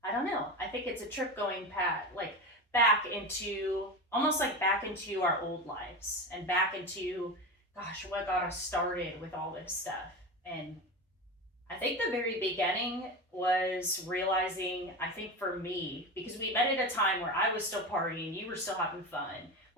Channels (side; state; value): both; normal; correlation 0.23